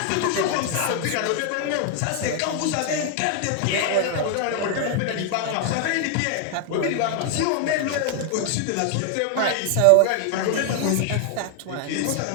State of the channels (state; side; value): different; both; correlation 0.00